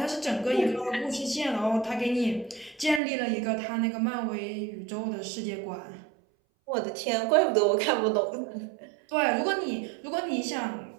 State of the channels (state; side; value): drops out; left; at 3.0 s